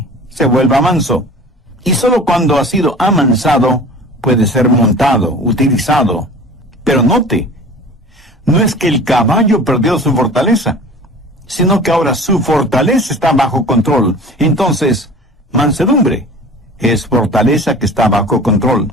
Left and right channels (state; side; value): normal; both; correlation 0.41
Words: se vuelva manso. Y solo cuando ha sido amansado puede ser montado, utilizado. Pero note, no es que el caballo perdió su fortaleza, sino que ahora su fortaleza está bajo control. Entonces, mansedumbre es fortaleza que está bajo control.